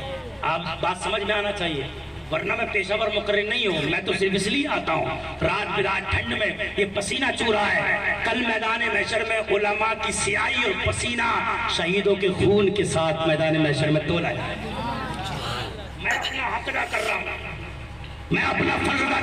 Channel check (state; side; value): identical; both; correlation 1.00